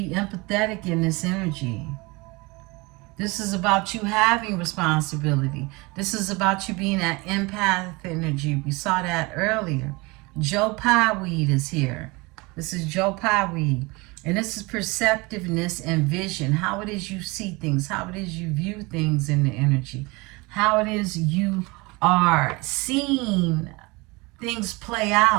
empathetic in this energy. This is about you having responsibility. This is about you being that empath energy. We saw that earlier. Joe Pye weed is here. This is Joe Pye weed. And this is perceptiveness and vision. How it is you see things. How it is you view things in the energy. How it is you are seeing things play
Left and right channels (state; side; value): quieter; left; 25.2 dB